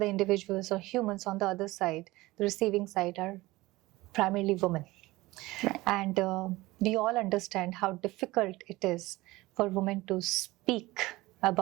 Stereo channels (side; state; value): left; quieter; 19.6 dB